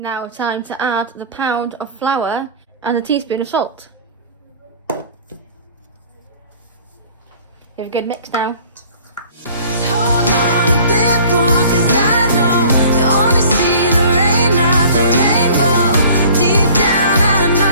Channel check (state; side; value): inverted; both; correlation -0.49